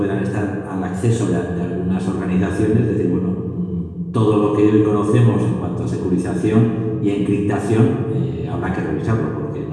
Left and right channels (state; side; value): identical; both; correlation 1.00